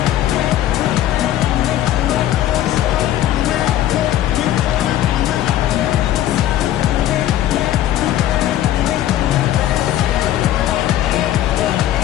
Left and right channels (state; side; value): quieter; right; 12.8 dB